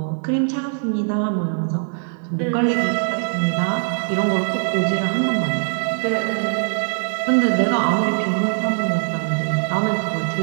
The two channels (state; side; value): silent; left; 65 dB below the other